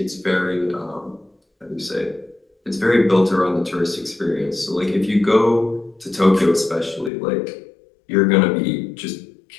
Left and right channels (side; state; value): right; drops out; at 7.1 s